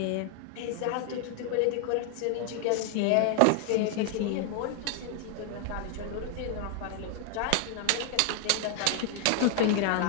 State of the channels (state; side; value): different; both; correlation 0.00